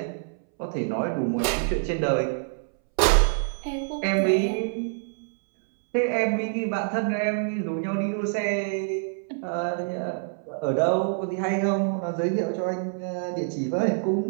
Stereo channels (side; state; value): left; silent; 61 dB below the other